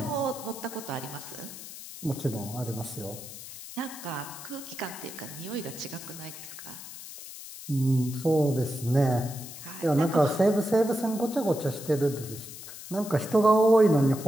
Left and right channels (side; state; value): left; noise; hiss, 13 dB below the sound